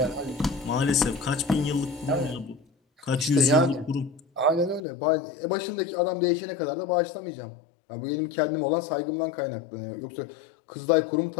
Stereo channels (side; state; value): right; drops out; at 4.8 s